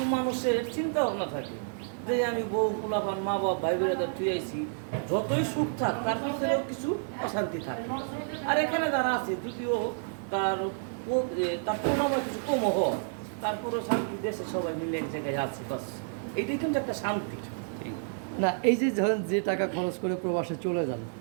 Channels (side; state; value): left; silent; digital silence